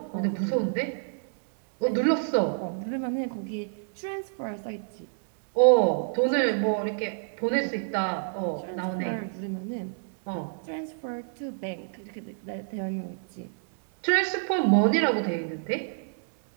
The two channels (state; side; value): silent; left; digital silence